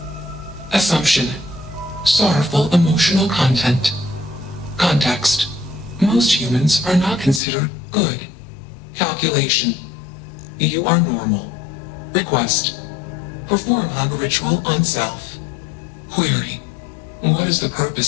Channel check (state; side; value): drops out; right; at 7.4 s